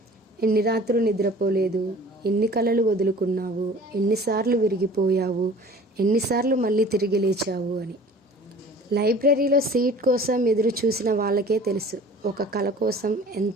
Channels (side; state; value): both; normal; correlation 0.46